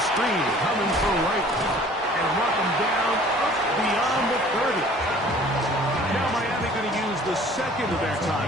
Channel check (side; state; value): both; normal; correlation 0.51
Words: screen coming for right. And mark them down up beyond the 30. Now Miami going to use the 2nd of their